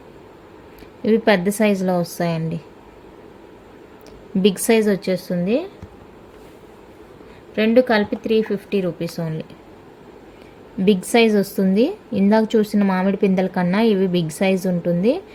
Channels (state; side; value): identical; both; correlation 1.00